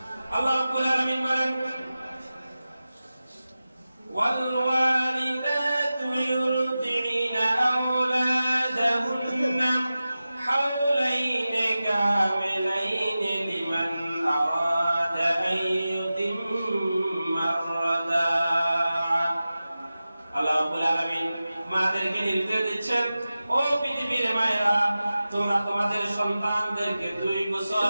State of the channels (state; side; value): inverted; both; correlation -0.95